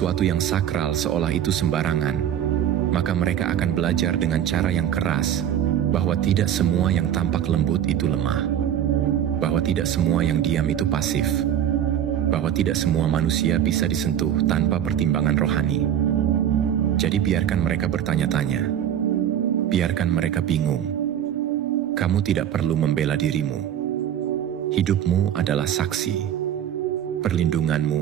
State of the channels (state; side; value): quieter; left; 10.1 dB